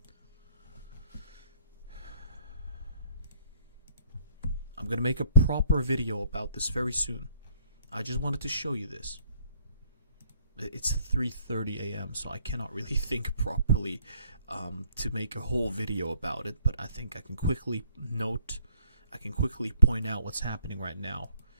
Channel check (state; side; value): inverted; both; correlation -0.64